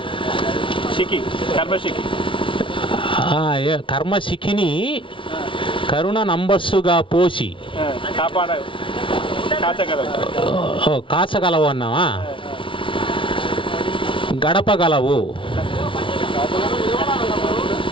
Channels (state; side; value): late; right; 0.25 ms